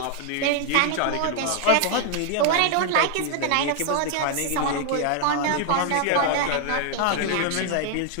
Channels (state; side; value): different; both; correlation 0.00